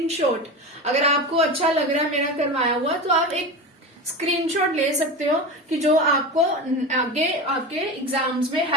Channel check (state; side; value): normal; both; correlation 0.25